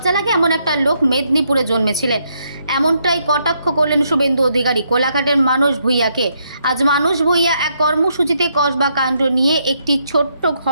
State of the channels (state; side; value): inverted; both; correlation -0.75